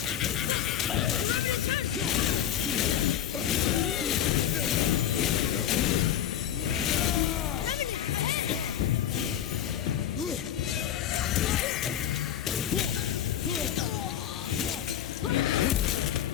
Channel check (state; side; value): quieter; right; 10.2 dB